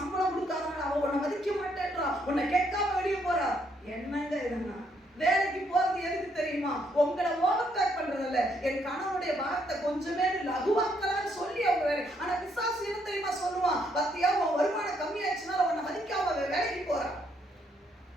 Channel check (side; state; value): both; normal; correlation 0.72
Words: கொடுக்காதனால அவ உன்னை மதிக்க மாட்டேன்றா, உன்னை கேட்காம வெளியே போறா. என்னங்க இதுன்னா வேலைக்கு போறது எதுக்கு தெரியுமா? உங்களை ஓவர்டேக் பண்றது இல்ல, என் கணவனுடைய பாரத்தை கொஞ்சமே லகுவாக்கலான்னு சொல்லி அவங்க வேலை. ஆனா பிசாசு என்ன தெரியுமா சொல்லுவான்? பத்தியா உன் வருமானம் கம்மியாச்சுனால உன்னை மதிக்காம வேலைக்கு போறான்.